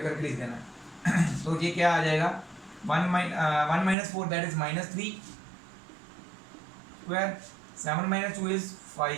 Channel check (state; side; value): drops out; left; at 4.0 s